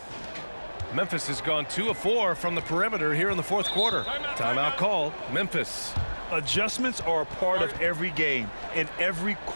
Memphis has gone 2 of 4 from the perimeter here in the fourth quarter. Timeout called. Memphis. Adjustments are a part of every game and every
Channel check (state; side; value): inverted; both; correlation -1.00